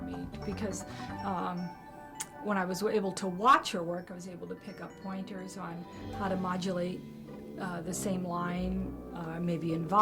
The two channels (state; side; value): identical; both; correlation 1.00